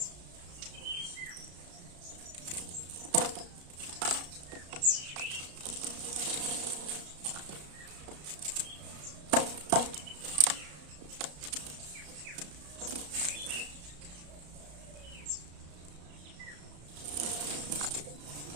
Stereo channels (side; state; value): left; late; 34 ms